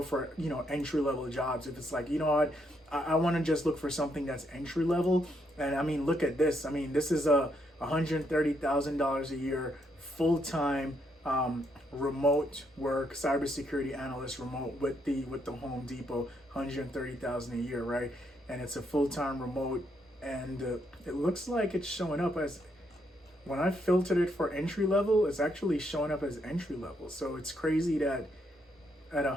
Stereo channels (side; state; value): both; normal; correlation 0.76